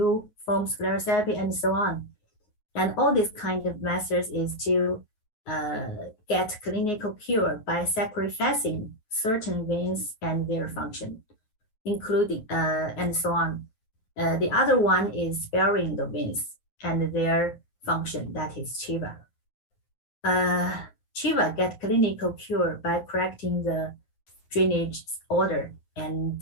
foam sclerotherapy, and so on. And all these kind of methods is to get clinical cure by sacrificing certain veins and their function, including and so on. The other one is sparing the veins and their function, that is Chiva. Chiva get clinical cure by correcting the drainage order and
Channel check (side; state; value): right; late; 9.4 ms